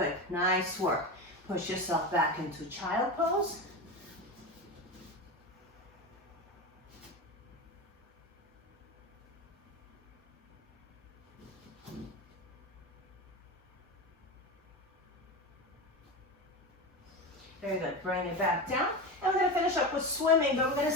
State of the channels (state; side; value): normal; both; correlation 0.22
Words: Nice work. Push yourself back into child pose. Very good. Bring it back down. And we're going to finish up with swimming, but we're going to